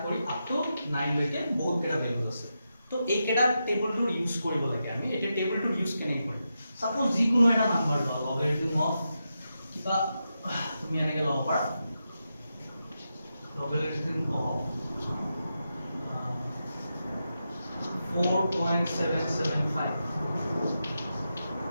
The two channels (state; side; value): inverted; both; correlation -0.87